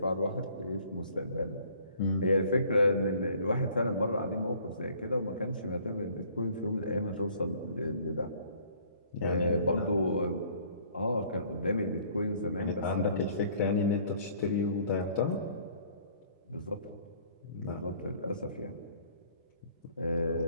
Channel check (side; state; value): both; inverted; correlation -0.57